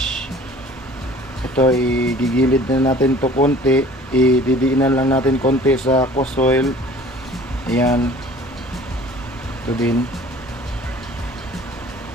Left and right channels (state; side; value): normal; both; correlation 0.48